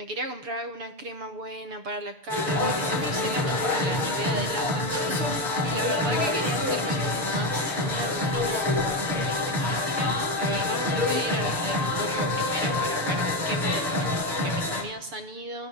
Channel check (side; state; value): left; late; 6.9 ms